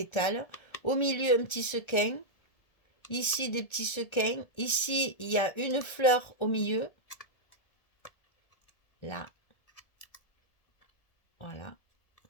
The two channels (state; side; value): late; right; 1.4 ms